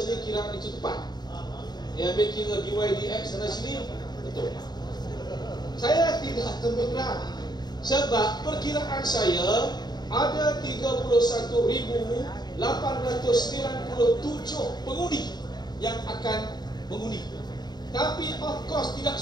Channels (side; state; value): right; late; 0.20 ms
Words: kiraan itu tepat. Dia ambil kira dydx sana sini, betul. Saya tidak terberat, sebab perkiraan saya ada 31.897 pengundi yang akan mengundi. Tapi of course tidak